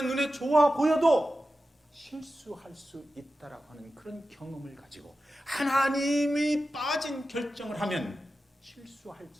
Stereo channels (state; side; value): normal; both; correlation 0.93